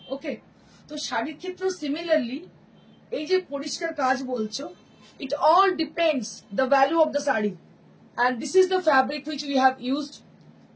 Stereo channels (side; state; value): both; identical; correlation 1.00